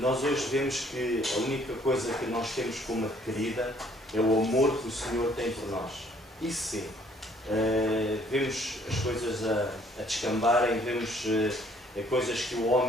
hoje vemos que a única coisa que nós temos como adquirida é o amor que o Senhor tem por nós. Isso sim. Vemos as coisas a descambarem, vemos coisas que o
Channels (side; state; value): both; normal; correlation 0.61